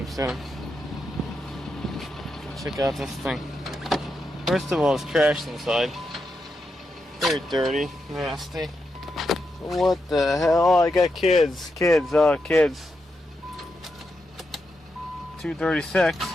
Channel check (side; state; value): both; normal; correlation 0.85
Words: soon. Check out this thing. First of all, it's trashed inside. Very dirty, nasty. What the hell? I got kids. Kids. 236.